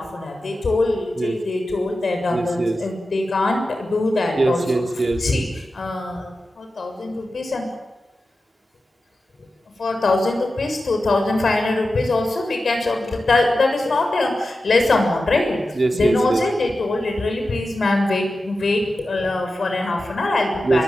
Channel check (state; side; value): normal; both; correlation 0.92